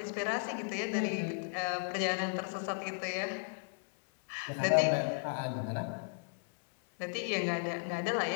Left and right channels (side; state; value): right; silent; 54 dB below the other